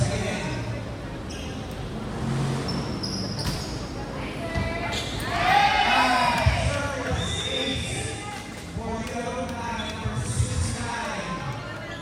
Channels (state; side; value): identical; both; correlation 1.00